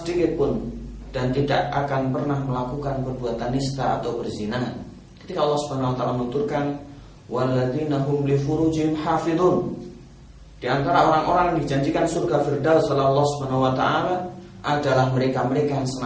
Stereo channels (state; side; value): identical; both; correlation 1.00